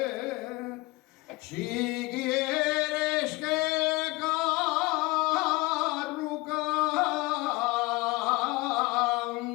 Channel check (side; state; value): right; quieter; 22.6 dB